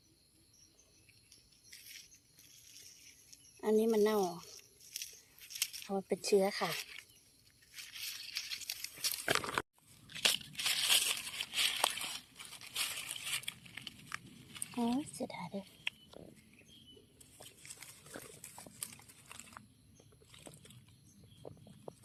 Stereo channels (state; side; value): identical; both; correlation 1.00